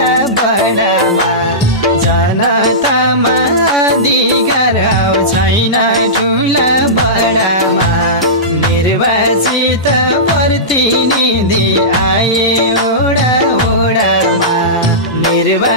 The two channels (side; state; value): both; normal; correlation -0.18